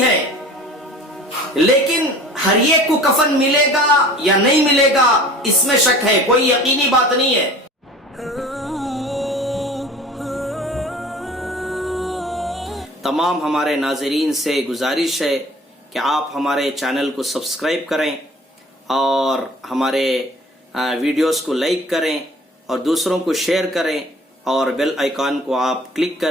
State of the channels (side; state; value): both; normal; correlation 0.45